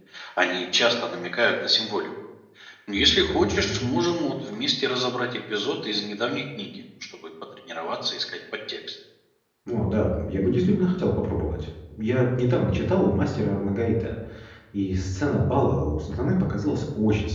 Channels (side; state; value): both; identical; correlation 1.00